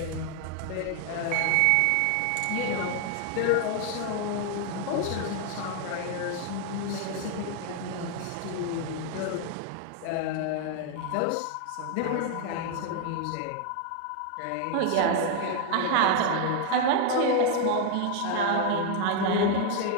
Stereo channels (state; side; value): different; both; correlation 0.00